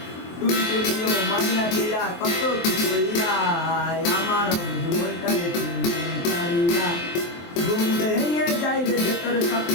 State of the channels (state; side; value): late; right; 23 ms